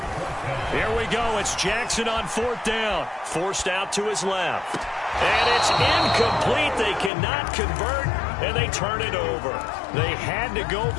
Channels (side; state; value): right; drops out; at 7.1 s